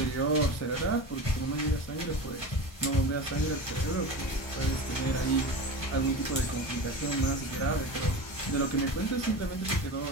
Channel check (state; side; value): late; right; 1.2 ms